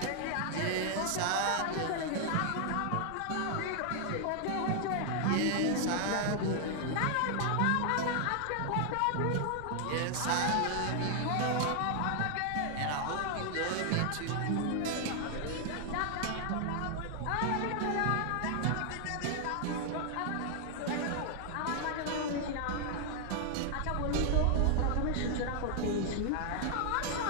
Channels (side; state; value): both; different; correlation 0.00